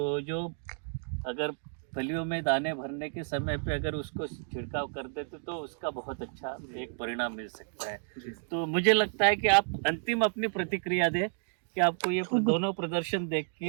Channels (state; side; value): silent; left; 57 dB below the other